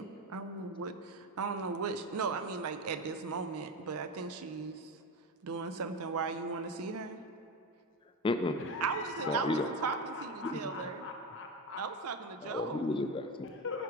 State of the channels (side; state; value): both; normal; correlation 0.20